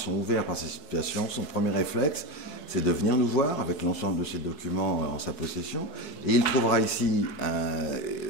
ouverts par ces situations. Son premier réflexe, c'est de venir nous voir avec l'ensemble de ses documents en sa possession. Et il trouvera ici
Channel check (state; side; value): late; right; 4.7 ms